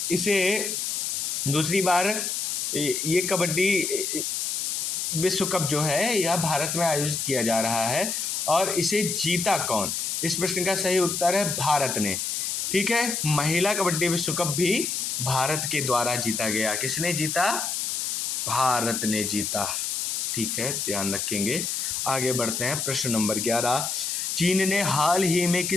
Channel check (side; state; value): left; noise; hiss, 1 dB below the sound